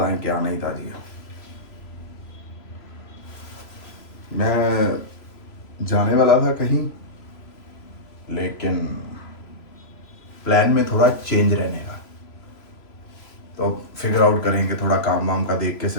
क्या नहीं था जी। मैं जाने वाला था कहीं, लेकिन प्लान में थोड़ा चेंज रहने का, तो फिगर आउट करेंगे थोड़ा काम वाम का देख के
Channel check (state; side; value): late; right; 3.0 ms